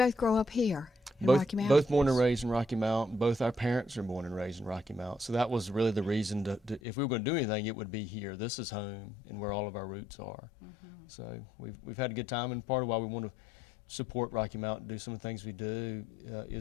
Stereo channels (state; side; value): drops out; right; at 6.8 s